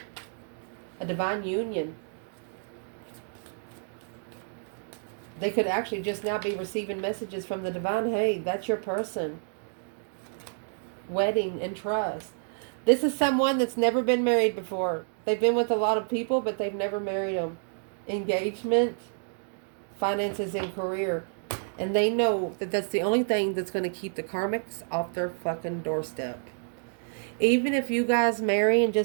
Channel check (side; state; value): left; silent; digital silence